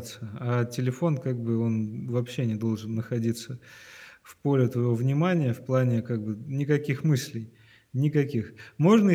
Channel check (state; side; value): identical; both; correlation 1.00